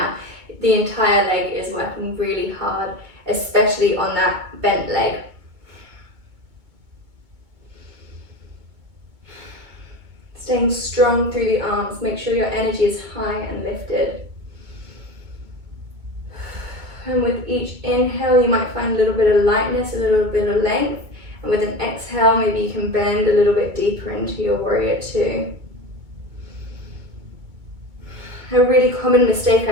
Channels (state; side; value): late; left; 2.2 ms